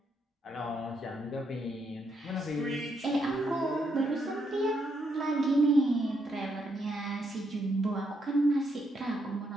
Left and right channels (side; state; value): both; normal; correlation 0.77